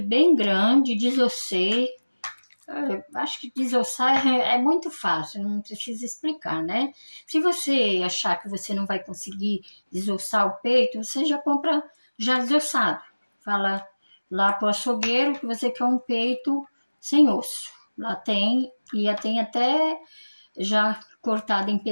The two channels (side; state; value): both; inverted; correlation -1.00